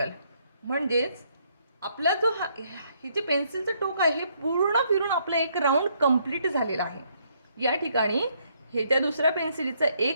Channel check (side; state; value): both; inverted; correlation -0.71